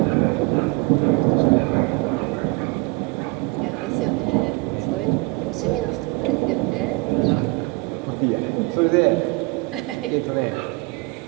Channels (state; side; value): quieter; left; 25.4 dB